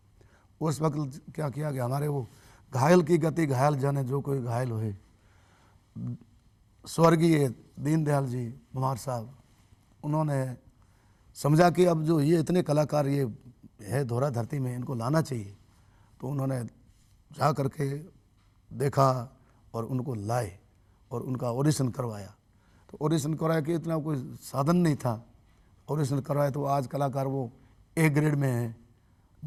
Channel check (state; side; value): identical; both; correlation 1.00